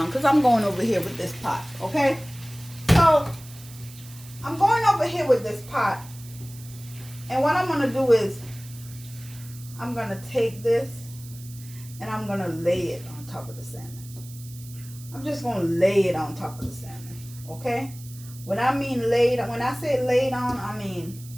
because I'm going over here with this pot. Okay? So, I'm going over here with this pot. And what I'm going to do is, I'm going to take this and I'm going to lay it on top of the salmon. I'm just going to lay it on top of the salmon, okay? When I say laid on, I mean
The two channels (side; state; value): right; noise; hiss, 19 dB below the sound